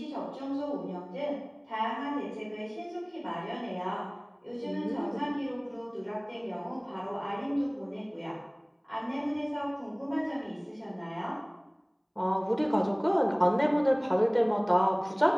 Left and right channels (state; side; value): identical; both; correlation 1.00